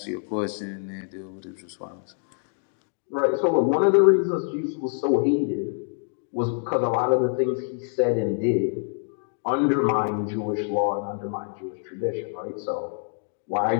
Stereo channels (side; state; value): right; silent; 61 dB below the other